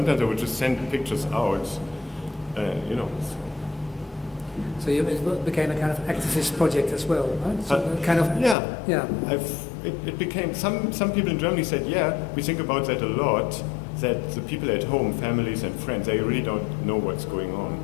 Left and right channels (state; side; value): drops out; right; at 8.6 s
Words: I would just send pictures out, you know. So it became a kind of activist project as well, right? So kind of. Yeah. It became, some people in Germany said, we think about that a lot, that the people at home, families and friends, they really don't know what's going on